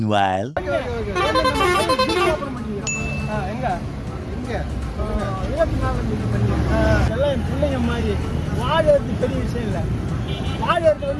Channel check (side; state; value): both; identical; correlation 1.00